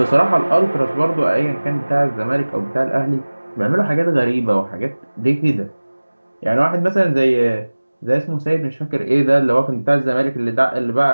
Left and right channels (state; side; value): inverted; both; correlation -1.00